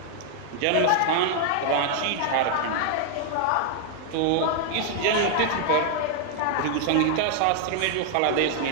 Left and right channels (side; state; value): both; different; correlation 0.00